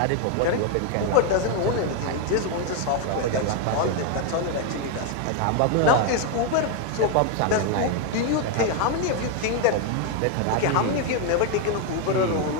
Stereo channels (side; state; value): both; different; correlation 0.01